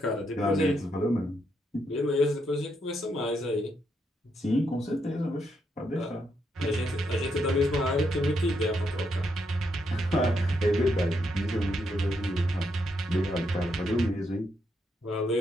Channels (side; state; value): both; normal; correlation 0.79